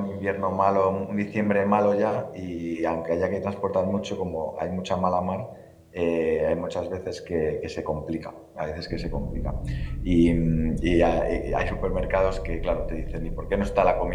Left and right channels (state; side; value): identical; both; correlation 1.00